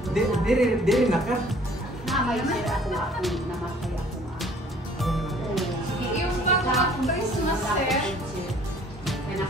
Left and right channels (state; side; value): normal; both; correlation 0.54